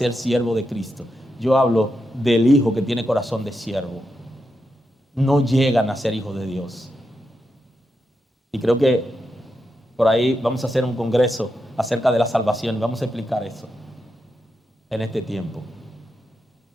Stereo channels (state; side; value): normal; both; correlation 0.86